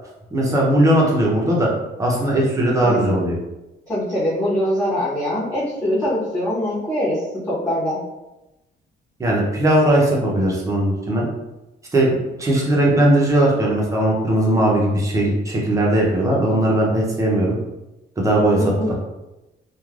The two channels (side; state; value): both; normal; correlation 0.60